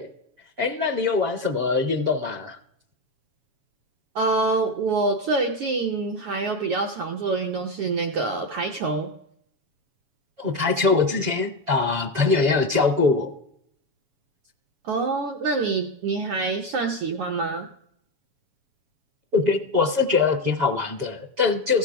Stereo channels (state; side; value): late; left; 7.1 ms